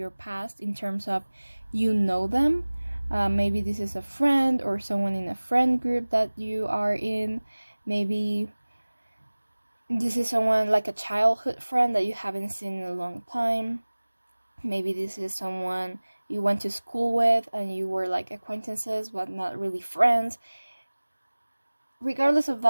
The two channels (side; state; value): both; inverted; correlation -1.00